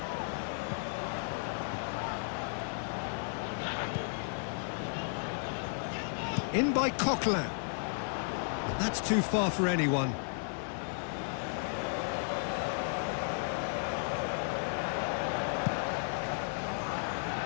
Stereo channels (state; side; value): silent; right; 55 dB below the other